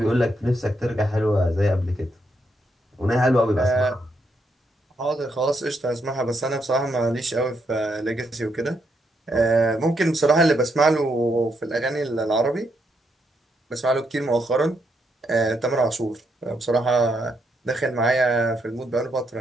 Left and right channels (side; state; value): both; normal; correlation 0.78